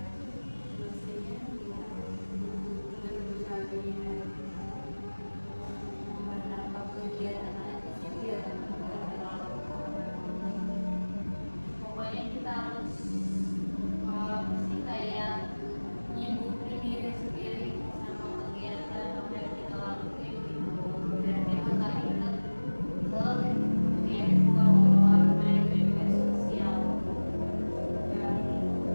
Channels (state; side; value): inverted; both; correlation -1.00